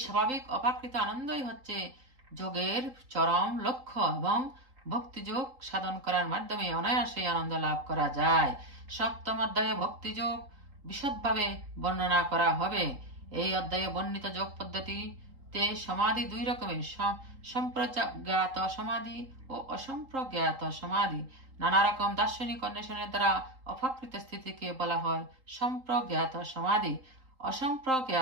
স্বাভাবিক অপাকৃত আনন্দই হচ্ছে যোগের চরম লক্ষ্য এবং ভক্তিযোগ সাধন করার মাধ্যমে অনায়াসে আনন্দ লাভ করা যায়। সপ্তম অধ্যায়ে ভক্তিযোগ বিশদভাবে বর্ণনা করা হবে। এই অধ্যায়ে বর্ণিত যোগ পদ্ধতিতে সমাধি দুই রকমের, সম্প্রজ্ঞাত সমাধি ও অসম্প্রজ্ঞাত সমাধি। নানা রকম দার্শনিক অন্বেষণের দ্বারা অপাকৃত স্থিতিকে বলা হয় সম্প্রজ্ঞাত সমাধি।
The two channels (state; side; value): late; left; 3.8 ms